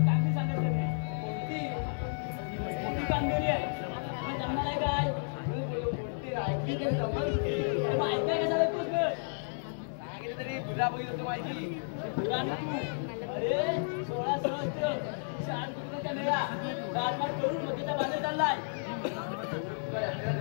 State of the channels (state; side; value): silent; right; digital silence